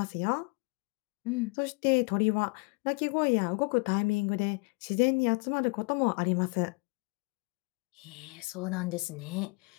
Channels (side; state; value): right; quieter; 31.1 dB